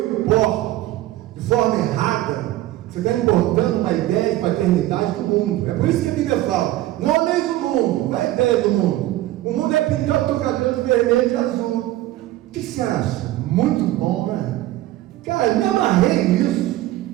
importo, de forma errada, você está importando uma ideia de paternidade do mundo. É por isso que a Bíblia fala, não ameis o mundo, não é a ideia do mundo. O mundo é pintar o teu cabelo de vermelho e de azul. O que você acha? Muito bom, né? Cara, me amarrei nisso.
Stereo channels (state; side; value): quieter; left; 15.6 dB